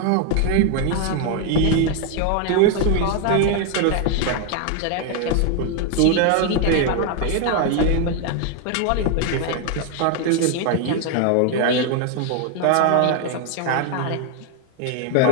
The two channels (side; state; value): both; different; correlation 0.00